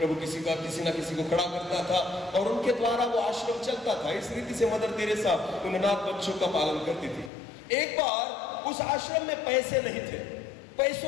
किसी ना किसी को खड़ा करता था और उनके द्वारा वो आश्रम चलता था। इस रीति से मदर तेरेसा उन अनाथ बच्चों का पालन करती थी। एक बार उस आश्रम में पैसे नहीं थे,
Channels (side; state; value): right; drops out; at 7.3 s